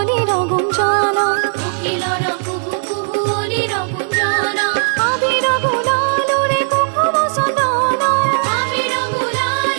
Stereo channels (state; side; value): silent; left; digital silence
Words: গুঞ্জন, কোকিলর কুহু কুহু অলির গুঞ্জন। আবির গুলাল রে কুকুম সন্দন, আবির